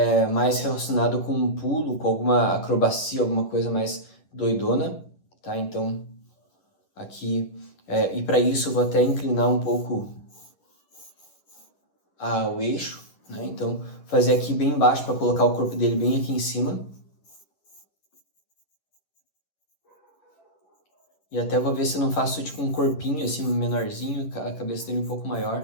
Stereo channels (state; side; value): late; right; 11 ms